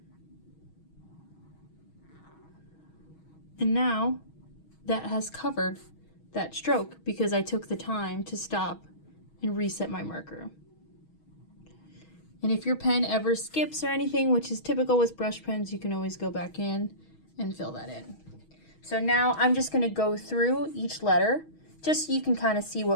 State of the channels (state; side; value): late; right; 6.3 ms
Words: And now that has covered that stroke because I took the time to stop and reset my marker. And if your pen ever skips or anything, which is typical with brush pens, you can always go back in and fill that in. So now I'm just going to go through each letter just so you can kind of see